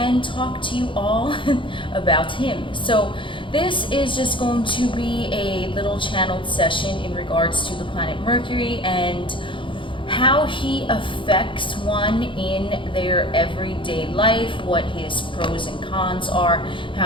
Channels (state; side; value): late; right; 0.24 ms